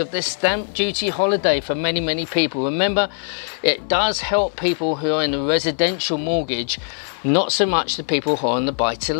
the stamp duty holiday for many people. Remember, it does help people who are in the residential mortgage, not so much the people who are on the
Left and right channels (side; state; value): right; silent; 62 dB below the other